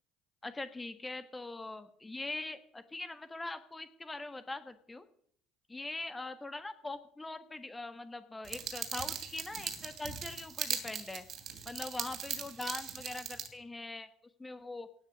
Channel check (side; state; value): both; normal; correlation 0.80